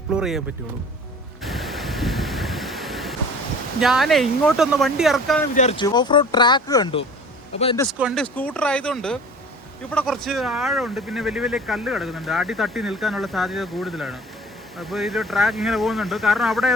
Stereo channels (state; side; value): normal; both; correlation 0.44